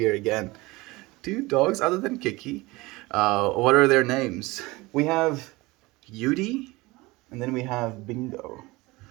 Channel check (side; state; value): left; quieter; 22.0 dB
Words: again. Two dogs other than Kiki. What are their names? We have Yudi, and then we have Bingo.